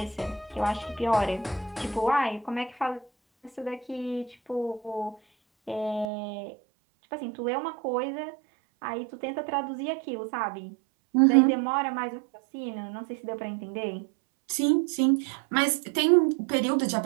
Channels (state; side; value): drops out; left; at 6.1 s